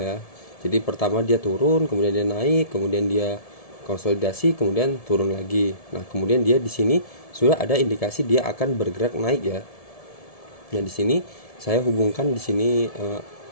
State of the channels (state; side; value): late; right; 1.7 ms